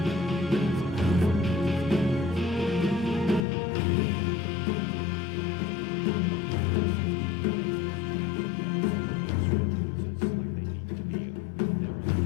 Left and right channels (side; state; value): right; drops out; at 3.5 s